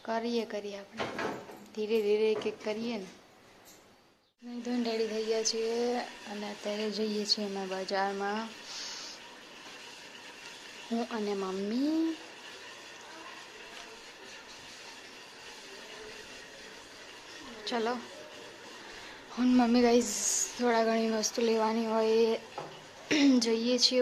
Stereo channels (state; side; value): identical; both; correlation 1.00